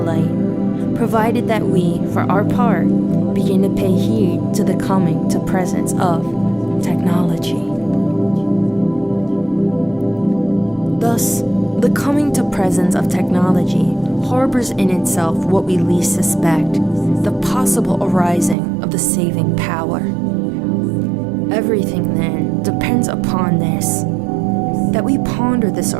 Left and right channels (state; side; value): drops out; left; at 18.6 s